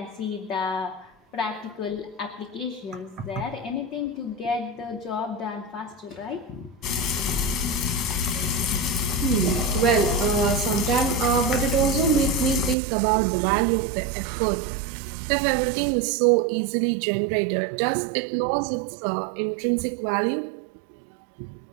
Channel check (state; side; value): drops out; left; at 12.8 s